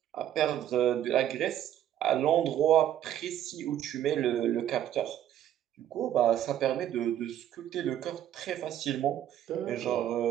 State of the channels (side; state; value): left; quieter; 11.3 dB